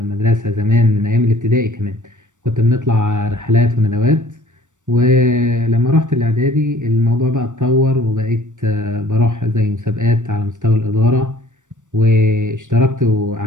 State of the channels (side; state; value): left; late; 0.85 ms